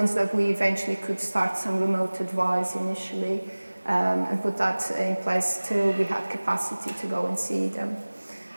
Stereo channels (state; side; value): inverted; both; correlation -1.00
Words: that we eventually could start some remote advice initially, and put that in place till we had capacity to go and see them.